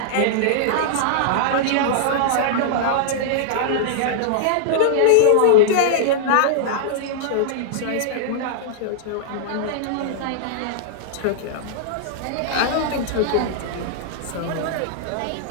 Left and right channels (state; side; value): different; both; correlation -0.01